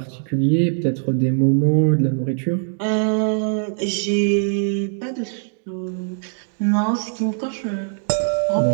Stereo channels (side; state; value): left; silent; 65 dB below the other